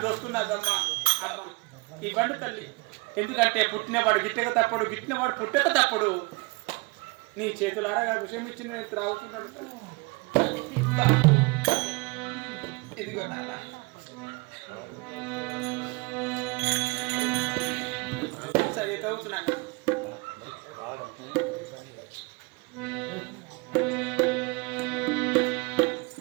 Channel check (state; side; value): quieter; left; 27.7 dB